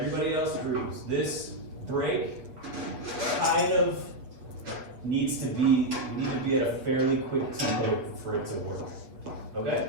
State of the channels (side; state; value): left; late; 7.6 ms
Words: else grooves. This break kind of needs to be at a fairly quick tempo for it to work. Okay?